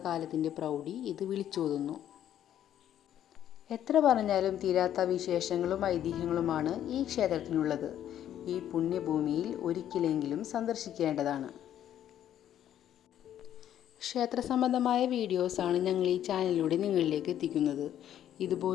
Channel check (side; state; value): right; quieter; 10.9 dB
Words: കാലത്തിൻ്റെ പ്രൗഢി ഇത് വിളിച്ചോതുന്നു. എത്ര പറഞ്ഞാലും തീരാത്ത വിശേഷങ്ങളും ഐതിഹ്യങ്ങളുമാണ് ഈ ക്ഷേത്രത്തിനുള്ളത്. ഈ പുണ്യഭൂമിയിൽ ഒരിക്കലെങ്കിലും സന്ദർശിക്കേണ്ടതാണ്. ക്ഷേത്ര സംബന്ധമായ വീഡിയോസാണ് ഞങ്ങൾ ഈ ചാനലിലൂടെ നിങ്ങളിലേക്ക് എത്തിക്കുന്നത്.